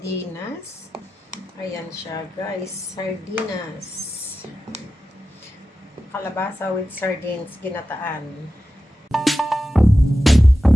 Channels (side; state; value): both; normal; correlation 0.93